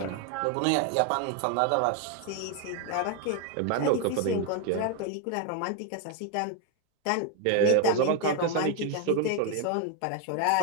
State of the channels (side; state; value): both; different; correlation 0.01